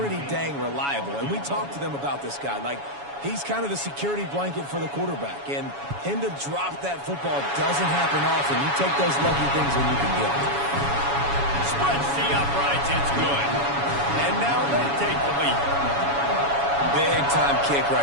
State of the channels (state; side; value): late; left; 7.1 ms